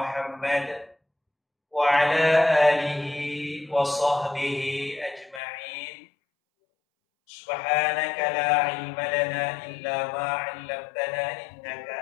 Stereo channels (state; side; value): drops out; right; at 5.4 s